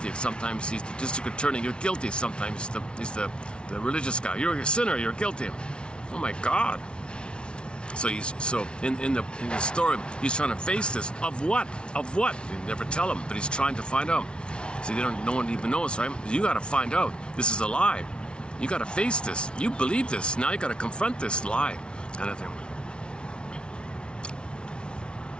Sometimes he's the district attorney, "You're guilty." Sometimes he's the religious guy, "You're a sinner, you're guilty." Oh my God. So in the story, he's trying to face this. Of what? Of what? They never tell him, but he's trying to find out. See, no one even knows, right? You got to find out. This is a lie. You got to face this. You believe this. Now you got to confront this lie, kind of thing.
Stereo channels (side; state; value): right; late; 0.057 ms